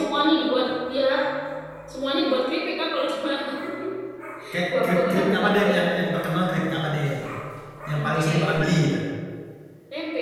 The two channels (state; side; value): identical; both; correlation 1.00